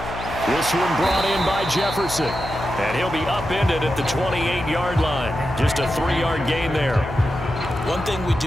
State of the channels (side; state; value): left; noise; hum, 10 dB below the sound